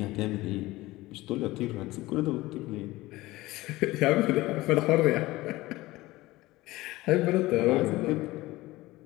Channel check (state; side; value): quieter; right; 18.9 dB